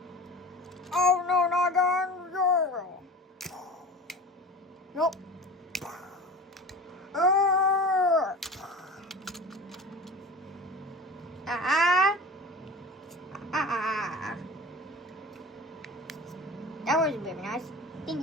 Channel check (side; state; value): both; normal; correlation 0.36